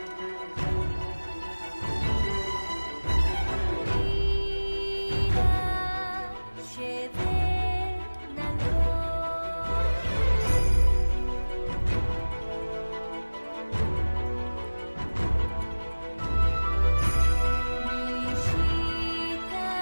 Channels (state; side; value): inverted; both; correlation -1.00